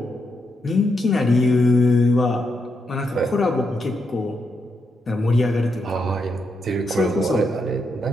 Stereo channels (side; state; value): both; normal; correlation 0.82